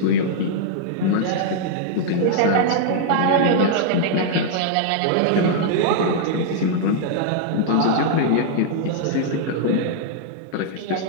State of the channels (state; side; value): different; both; correlation -0.01